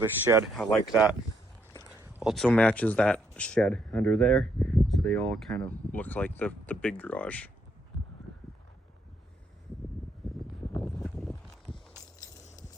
shed, I like that. Also matches that shed under there, so they all kind of look like the big garage.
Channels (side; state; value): both; normal; correlation 0.74